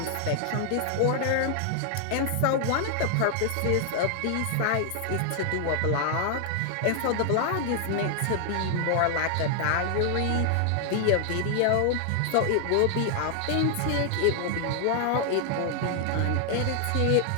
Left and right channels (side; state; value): both; different; correlation 0.00